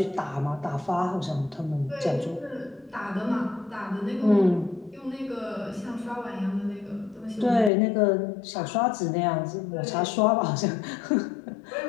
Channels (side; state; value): right; drops out; at 7.7 s